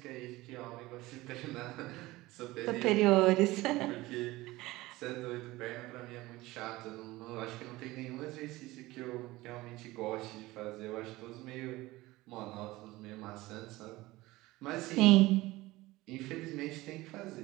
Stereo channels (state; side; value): quieter; left; 19.2 dB